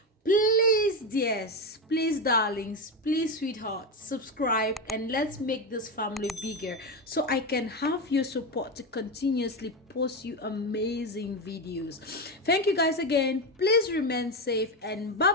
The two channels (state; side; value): normal; both; correlation 0.14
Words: Please dears, please darlings, please sweethearts, subscribe and let's make this family bigger so I can have your support to continuously post you amazing videos. Thank you guys again. Please remain safe and bye